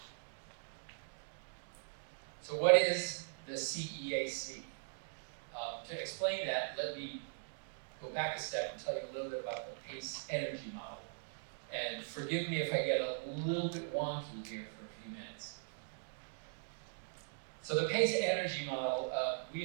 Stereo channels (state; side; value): silent; left; digital silence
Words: So what is the CEAC? To explain that, let me go back a step and tell you a little bit about the PACE energy model. And forgive me if I get a little bit wonky here for a few minutes. So the PACE energy model, we